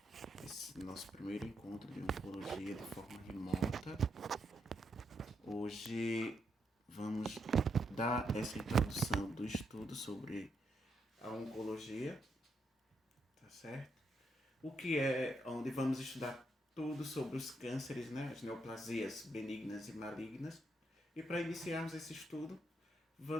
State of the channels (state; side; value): normal; both; correlation 0.79